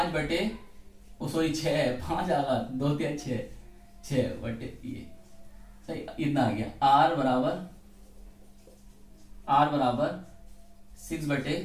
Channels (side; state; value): both; identical; correlation 1.00